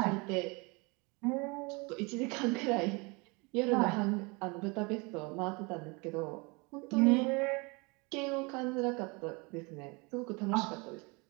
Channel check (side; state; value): left; quieter; 28.4 dB